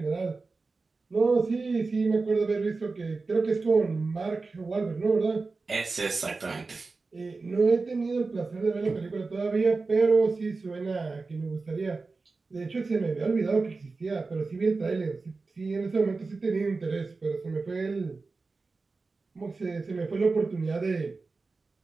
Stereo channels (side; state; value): left; quieter; 4.0 dB